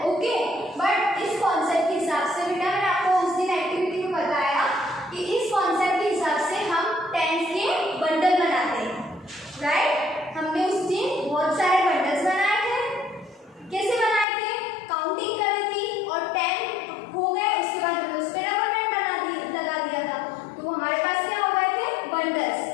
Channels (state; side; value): drops out; right; at 14.2 s